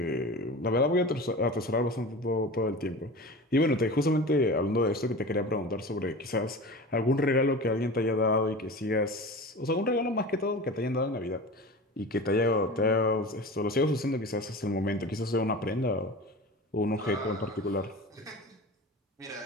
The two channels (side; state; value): both; normal; correlation 0.33